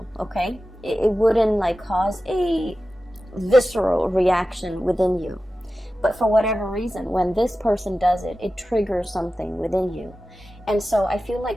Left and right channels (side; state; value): both; normal; correlation 0.94